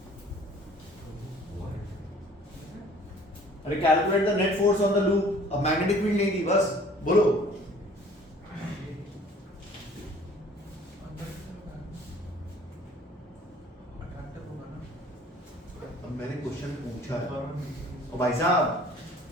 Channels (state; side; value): normal; both; correlation 0.52